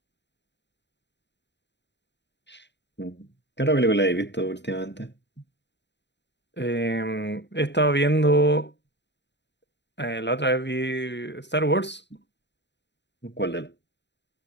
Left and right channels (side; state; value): right; late; 0.51 ms